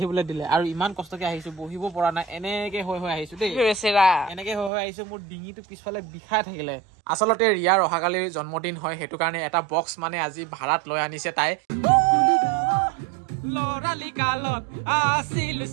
দিলে আৰু ইমান কষ্টকে আহিছো বহিব পৰা নাই এনেকে হৈ আহিছো দেই এনেকে হৈ আহিছো মোৰ ডিঙিটো পিছফালে বিষাই থাকিলে আচলতে ৰিয়াৰ অহাকালিৰ জন্মদিন হয় সেইটো কাৰণে এটা বক্স মানে আজি ভাড়াত লৈ আনিছে তাই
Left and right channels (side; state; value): left; drops out; at 4.7 s